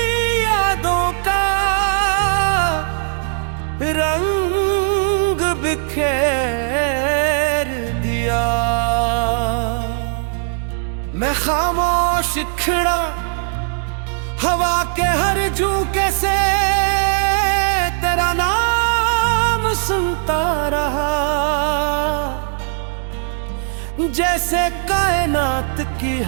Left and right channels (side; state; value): left; silent; digital silence